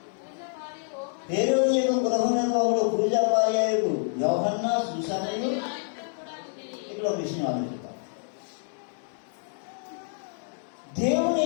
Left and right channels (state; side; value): silent; right; digital silence